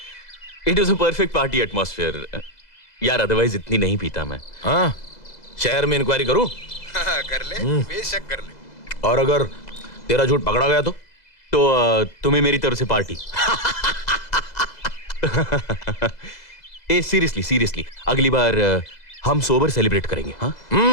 It was a perfect party atmosphere यार, अदरवाइज इतनी नहीं पीता मैं। हाँ, शहर में इंक्वायरी करूं? कर ले, बेशक कर ले। और अगर तेरा झूठ पकड़ा गया तो तुम्हें मेरी तरफ से पार्टी। ए सीरियसली अगली बार हम सोबर सेलिब्रेट करेंगे। हाँ,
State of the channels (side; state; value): right; late; 2.0 ms